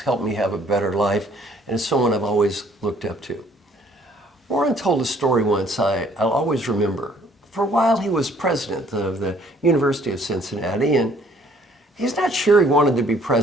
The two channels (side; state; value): both; normal; correlation 0.61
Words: me have a better life, and is someone I've always looked up to. Warren told a story once I'll always remember. For a while, he was president of the University of Cincinnati, and he's not sure he wanted to be